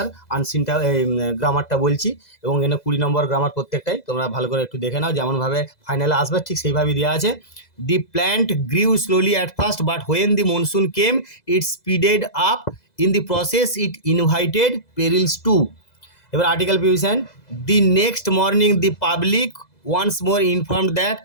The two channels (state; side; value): late; right; 2.0 ms